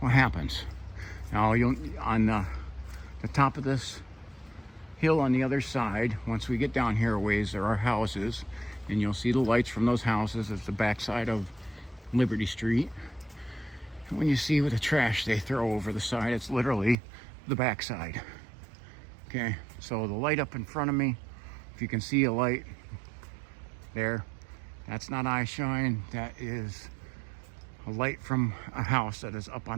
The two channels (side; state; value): left; drops out; at 16.9 s